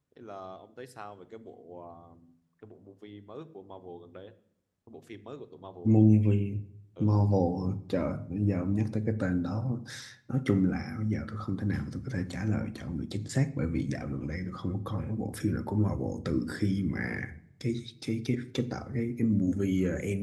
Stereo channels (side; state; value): both; identical; correlation 1.00